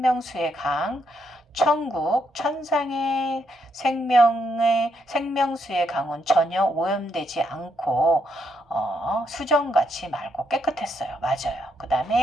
강, 천국, 천상의 생명수의 강은 전혀 오염되지 않고 수정같이 맑고 깨끗했어요. 맞아요. 그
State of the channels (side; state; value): both; normal; correlation 0.77